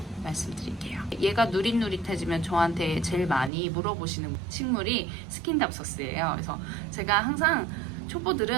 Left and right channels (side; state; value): left; drops out; at 3.5 s